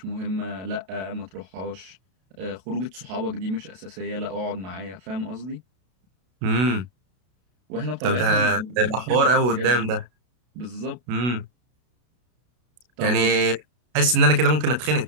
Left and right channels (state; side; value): late; left; 32 ms